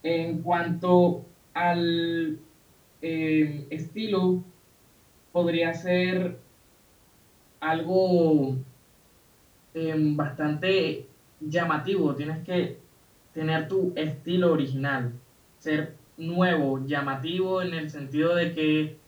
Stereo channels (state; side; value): identical; both; correlation 1.00